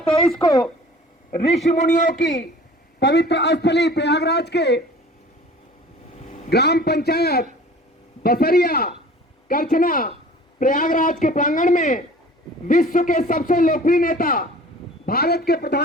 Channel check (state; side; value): normal; both; correlation 0.46